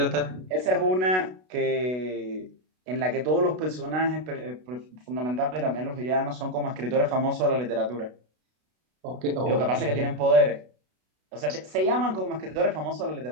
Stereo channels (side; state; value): left; late; 32 ms